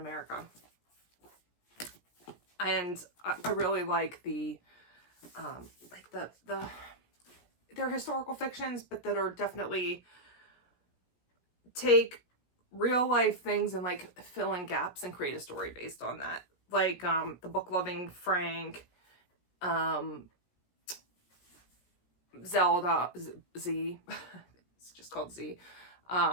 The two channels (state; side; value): late; right; 17 ms